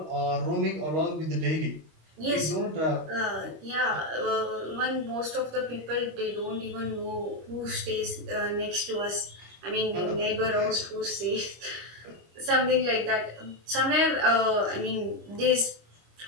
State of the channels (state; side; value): late; left; 26 ms